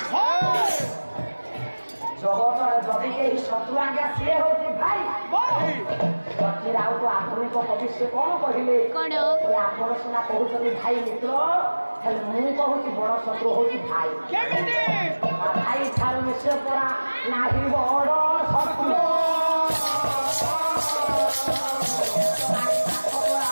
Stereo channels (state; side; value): inverted; both; correlation -1.00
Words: ଜଗତରେ ଯଦି କେହି ଶତ୍ରୁ ଆଜ୍ଞା ସିଏ ହଉଛି ଭାଇ। ଆଉ ତ ଆଧୁନିକ କବି ସେ କଣ କହିଲେ? ଆପଣ ସିନା କହୁଛନ୍ତି ଭାଇ ମିତ୍ର, ହେଲେ ମୁଁ କହୁଛି ବଡ ଶତ୍ରୁ ହଉଛି ଭାଇ। ଭାଇ ଠାରୁ ମିଶେ ପରା ନାହିଁ ବଡ ଶତ୍ରୁ।